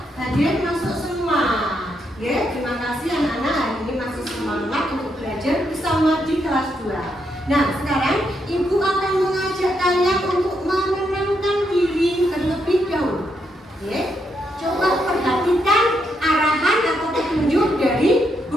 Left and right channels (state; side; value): normal; both; correlation 0.79